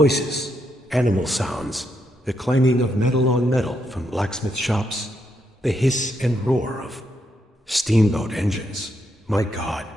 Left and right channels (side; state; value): both; normal; correlation 0.79